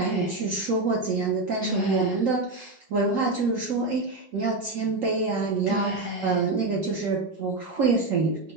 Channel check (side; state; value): left; quieter; 3.2 dB